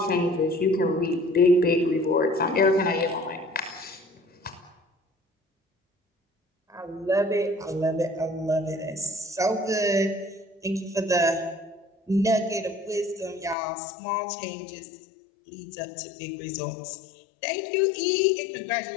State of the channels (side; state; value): right; drops out; at 13.6 s